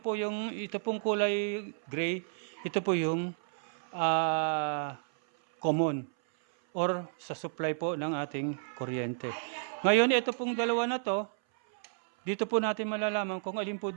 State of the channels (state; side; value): silent; left; 57 dB below the other